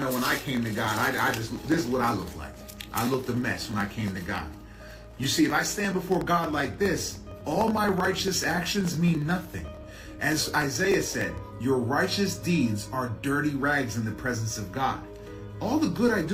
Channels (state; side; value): identical; both; correlation 1.00